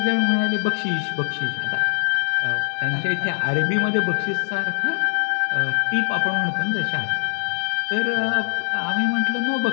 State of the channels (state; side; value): silent; right; digital silence